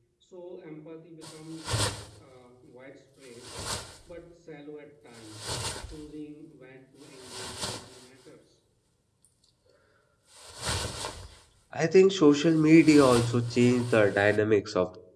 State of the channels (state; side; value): identical; both; correlation 1.00